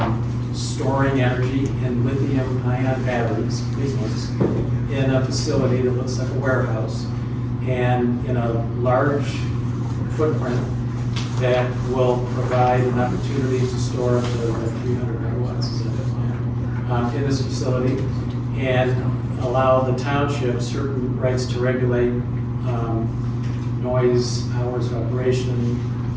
storing energy in lithium-ion batteries, big ones, in a facility that looks like a warehouse, and in a large footprint that will provide an opportunity to store up to like 300 megawatts is that, in this facility, and allow the township certain rights to regulate noise, hours of operation,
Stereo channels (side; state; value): both; identical; correlation 1.00